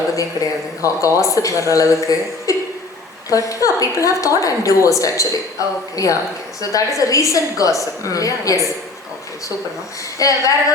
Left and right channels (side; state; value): right; quieter; 3.3 dB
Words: கிடையாது காசிப் வர்ற அளவுக்கு. But yeah, people have thought I'm divorced actually. Okay. Yeah. Okay. So that is a recent gossip. Yes. Okay, super ma'am. வேற